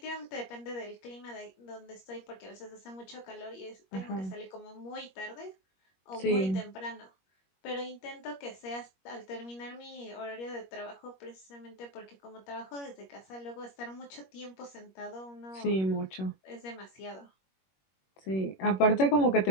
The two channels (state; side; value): late; right; 21 ms